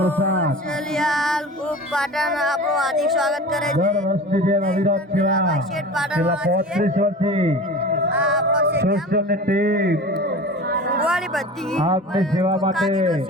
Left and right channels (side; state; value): both; normal; correlation 0.36